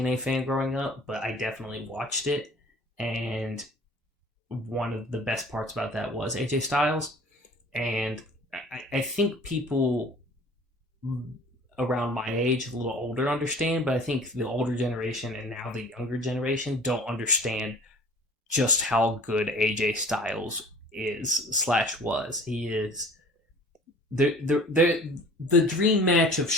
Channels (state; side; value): normal; both; correlation 0.46